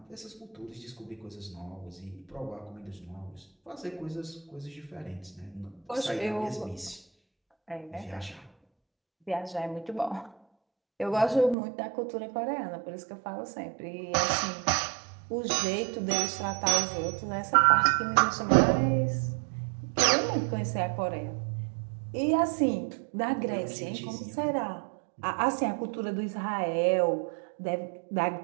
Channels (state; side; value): drops out; left; at 11.6 s